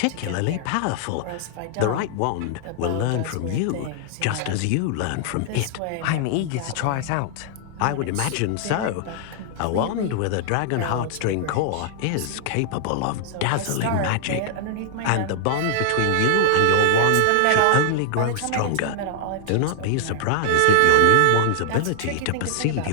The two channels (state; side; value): different; both; correlation -0.01